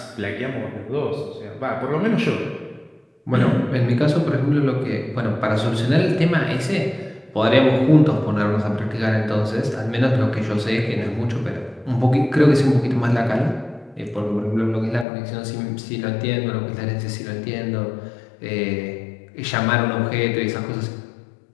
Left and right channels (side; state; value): right; drops out; at 15.1 s